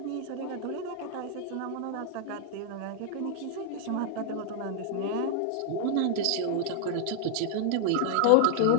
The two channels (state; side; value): different; both; correlation 0.00